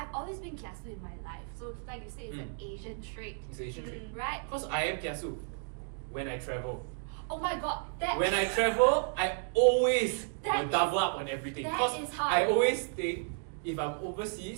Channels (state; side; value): silent; left; 56 dB below the other